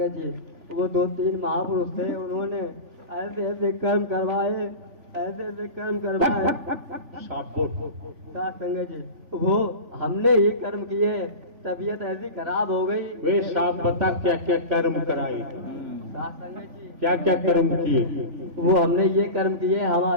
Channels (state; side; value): late; left; 3.4 ms